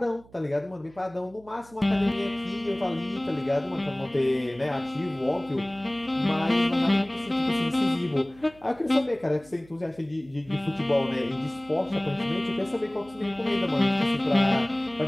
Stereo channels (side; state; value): right; noise; hum, 25 dB below the sound